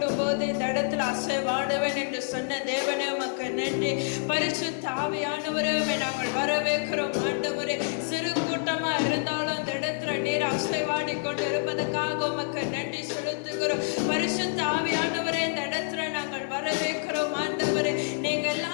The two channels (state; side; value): silent; right; digital silence